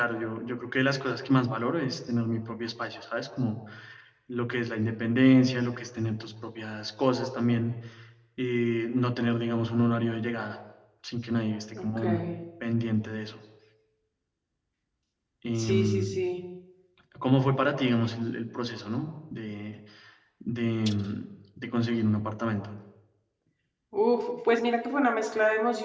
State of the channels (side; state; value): both; identical; correlation 1.00